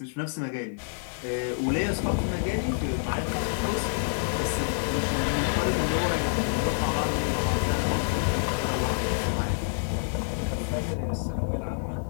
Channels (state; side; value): silent; right; digital silence